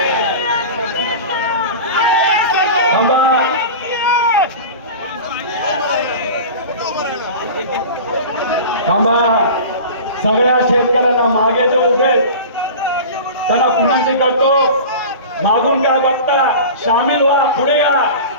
थांबा, सगळ्या शेतकऱ्यांना मागे जे उभे त्यांना विनंती करतो, मागून काय बघता, सामील व्हा, पुढे या.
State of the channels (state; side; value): inverted; both; correlation -0.33